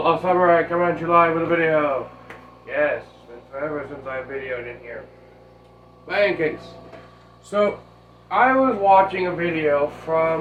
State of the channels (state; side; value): identical; both; correlation 1.00